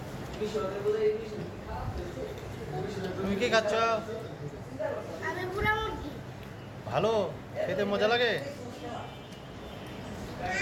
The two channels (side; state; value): both; identical; correlation 1.00